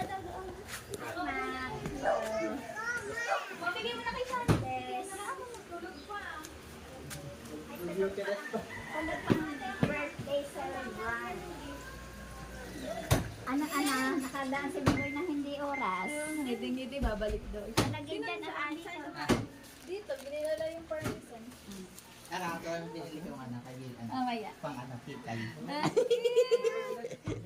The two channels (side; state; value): both; identical; correlation 1.00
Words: daw doon. Mabigay mo na kay Sandes. Birthday celebrant. Anak-anak, nakadaan si Bigoy na hindi oras. Ngiti-ngiti, babalik doon. Nalagyan dyan ang anis. Dito, ginilala yung permission. Ako ang pinili ko ng anak kaibigan. Mamaya. Pang anak kitay.